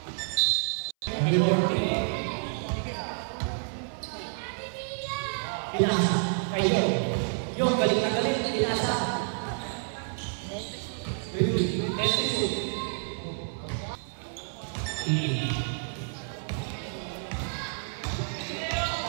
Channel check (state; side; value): silent; left; 58 dB below the other